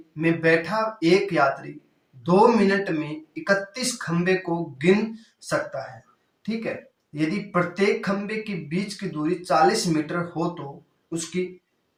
में बैठा एक यात्री 2 मिनट में 31 खंबे को गिन सकता है। ठीक है, यदि प्रत्येक खंबे के बीच की दूरी 40 मीटर हो तो उसकी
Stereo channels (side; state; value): both; identical; correlation 1.00